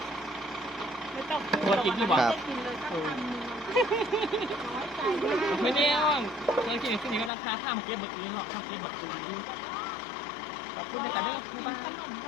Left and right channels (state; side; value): drops out; right; at 7.3 s